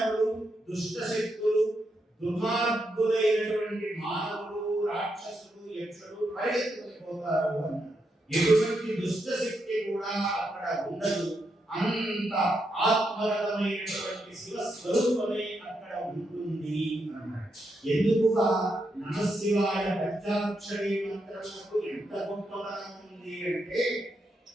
దుష్ట శక్తులు, దుర్మార్గులైనటువంటి మానవులు, రాక్షసులు, యక్షులు పరిగెత్తుకుని పోతారు అన్నారు. ఎటువంటి దుష్ట శక్తి కూడా అక్కడ ఉండదు. అంత ఆత్మగతమైనటువంటి శివ స్వరూపమే అక్కడ ఉంటుంది అన్నాడు. ఎందుకు నమశివాయ పంచాక్షరి మంత్రములకు ఎంత గొప్పతనం ఉంది అంటే,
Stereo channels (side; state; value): both; normal; correlation 0.82